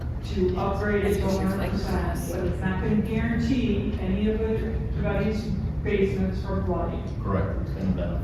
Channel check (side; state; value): both; identical; correlation 1.00